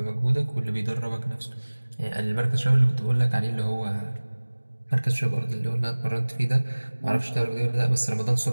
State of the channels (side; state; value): both; inverted; correlation -1.00